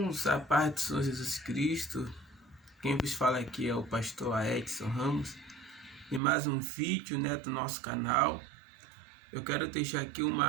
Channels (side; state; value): left; drops out; at 6.2 s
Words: a paz do Senhor Jesus Cristo. Quem vos fala aqui é o pastor Edson Ramos e mais um vídeo do nosso canal. Eu quero deixar aqui